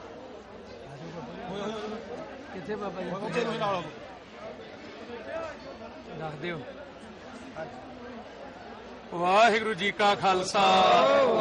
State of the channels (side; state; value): both; identical; correlation 1.00